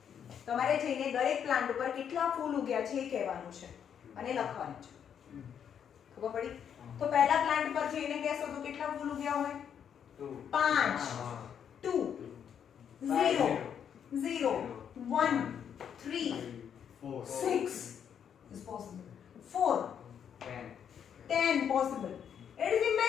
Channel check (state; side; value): quieter; right; 8.3 dB